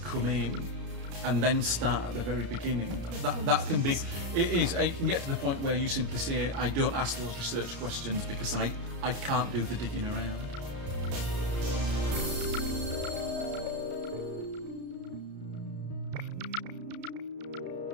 come in and then start at the very beginning, that can be, it can get to the point where you simply say, I don't ask those research questions because I can't do the digging around.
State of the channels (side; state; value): left; late; 33 ms